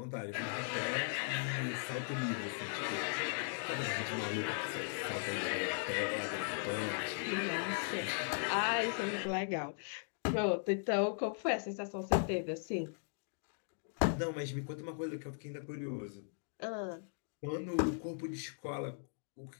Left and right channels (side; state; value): right; silent; digital silence